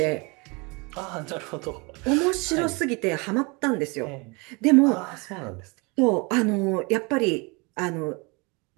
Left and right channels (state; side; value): quieter; left; 28.7 dB